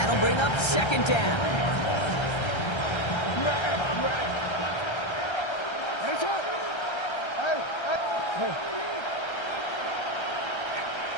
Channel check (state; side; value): late; right; 1.3 ms